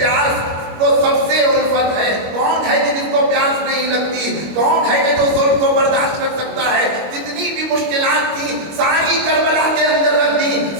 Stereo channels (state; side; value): late; left; 25 ms